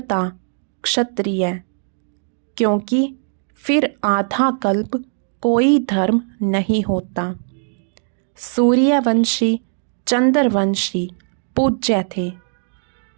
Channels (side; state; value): left; silent; digital silence